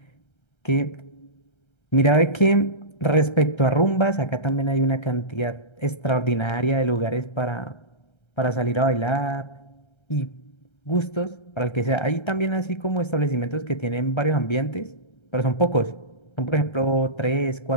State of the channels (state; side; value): late; right; 1.3 ms